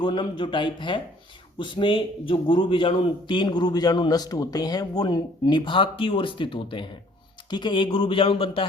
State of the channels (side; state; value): both; normal; correlation 0.57